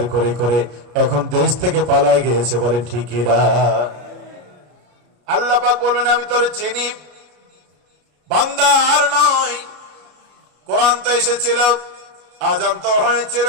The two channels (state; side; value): late; left; 33 ms